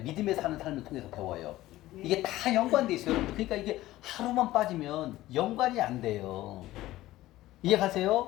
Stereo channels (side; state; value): right; quieter; 16.1 dB